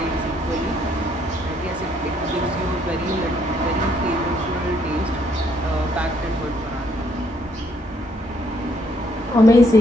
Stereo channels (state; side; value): normal; both; correlation 0.69